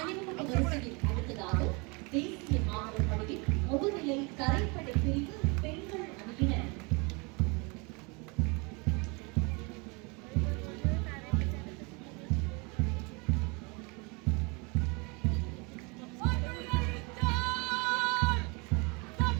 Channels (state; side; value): quieter; left; 29.7 dB